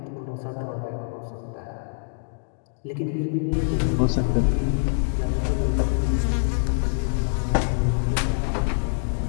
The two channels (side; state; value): right; silent; digital silence